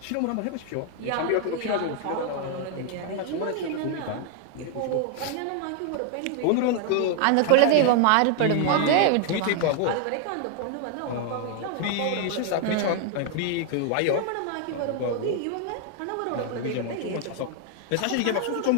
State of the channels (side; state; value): both; different; correlation 0.00